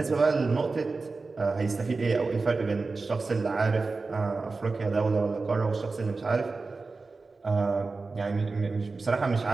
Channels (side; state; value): left; quieter; 3.9 dB